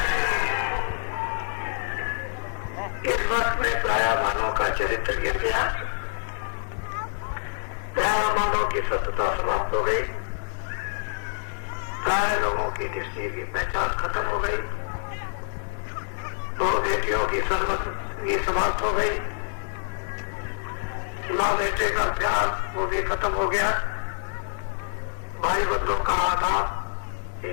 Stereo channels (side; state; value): right; silent; 61 dB below the other